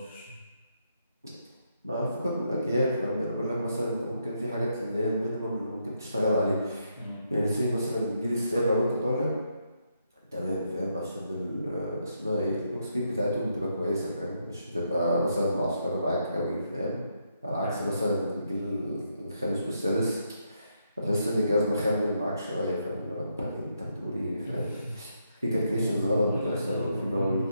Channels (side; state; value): both; inverted; correlation -0.78